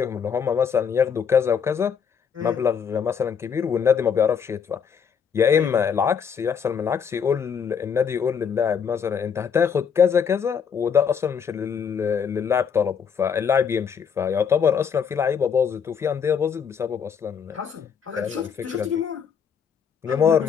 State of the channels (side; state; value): right; quieter; 6.9 dB